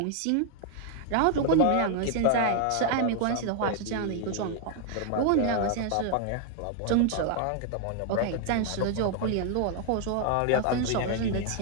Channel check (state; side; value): different; both; correlation 0.00